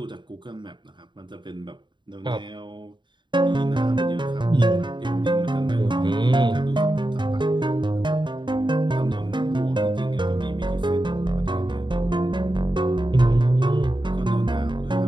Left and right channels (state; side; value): late; left; 0.23 ms